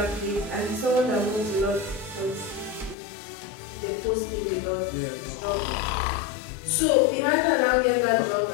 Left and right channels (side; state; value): right; drops out; at 3.0 s